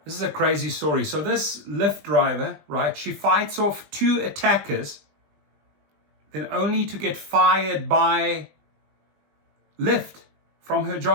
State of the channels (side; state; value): left; late; 20 ms